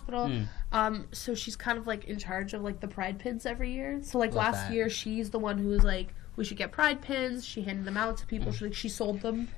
So she's kind of, like, in charge of, like, the pride pins every year. So, like, Love last that. year, she's the one who was like, we should get pride pins. She handed them out to people. She sold them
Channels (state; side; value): quieter; right; 15.0 dB